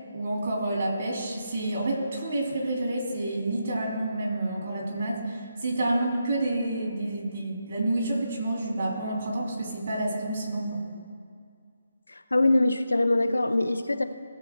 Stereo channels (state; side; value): inverted; both; correlation -0.85